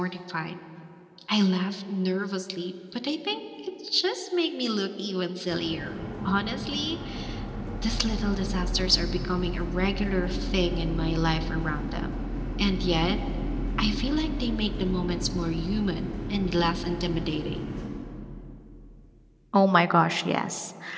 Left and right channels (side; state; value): both; identical; correlation 1.00